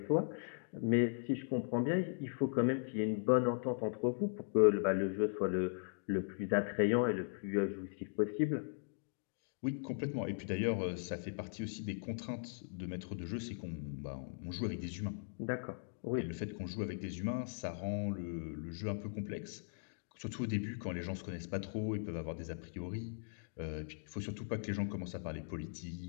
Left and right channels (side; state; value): right; silent; digital silence